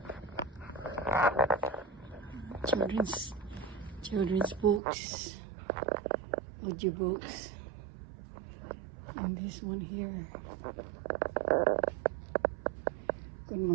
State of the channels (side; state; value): left; drops out; at 4.8 s